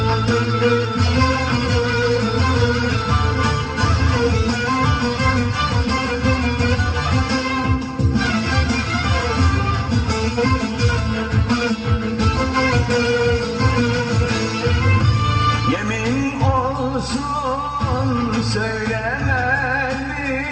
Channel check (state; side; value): identical; both; correlation 1.00